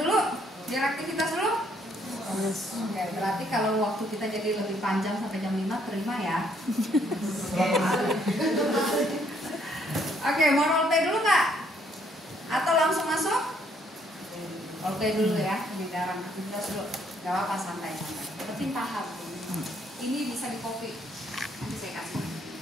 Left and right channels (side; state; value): both; normal; correlation 0.67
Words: biar aktivitas dulu. Oke, berarti kalau waktu kita jadi lebih panjang sampai jam 5, terima ya. Oke, mau role play dulu nggak? Atau langsung masuk? Role play dulu ya, pembicaraan aktivitas dulu. Gak apa-apa, santai-santai. Penting paham. Ini bisa di copy. Nanti saya kasih.